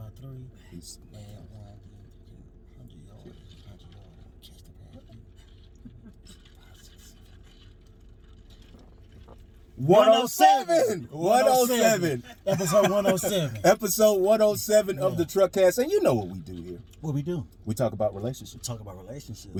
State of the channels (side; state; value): both; identical; correlation 1.00